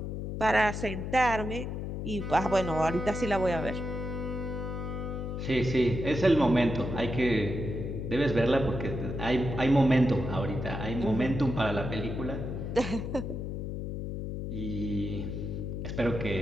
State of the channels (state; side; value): noise; left; hum, 4 dB below the sound